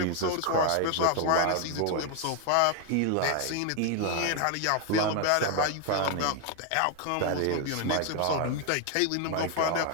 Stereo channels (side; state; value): both; different; correlation 0.01